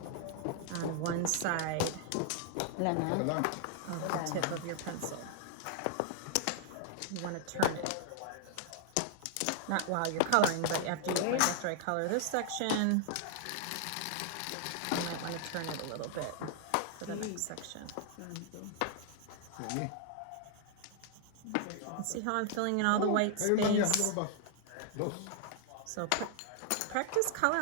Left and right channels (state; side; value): different; both; correlation 0.00